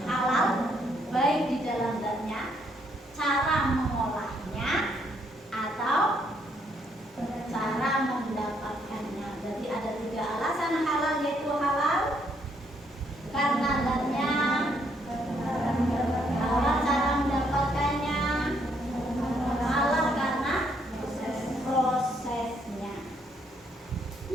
halal, baik di dalam zatnya, cara mengolahnya, atau cara mendapatkannya. Jadi ada 3 alasan halal, yaitu halal karena zatnya, halal cara mendapatkannya, halal karena prosesnya.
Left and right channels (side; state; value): both; normal; correlation 0.71